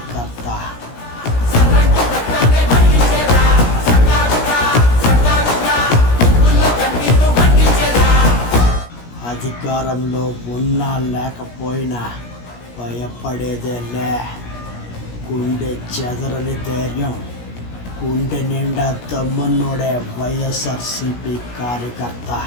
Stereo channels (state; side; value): late; right; 17 ms